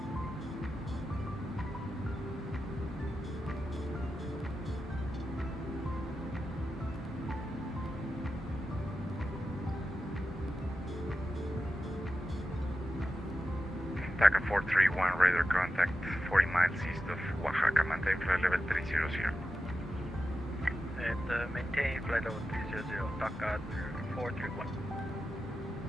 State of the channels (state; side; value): normal; both; correlation 0.91